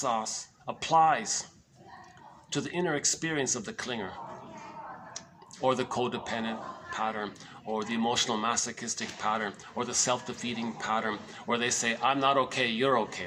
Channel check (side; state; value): both; identical; correlation 1.00